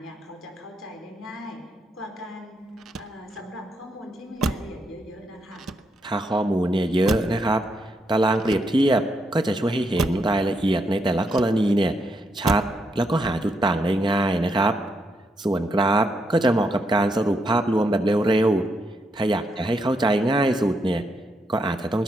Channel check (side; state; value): both; normal; correlation 0.79